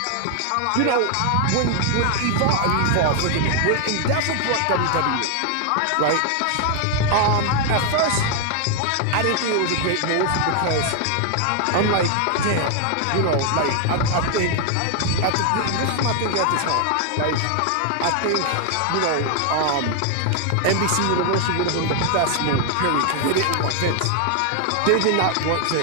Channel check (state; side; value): different; both; correlation 0.00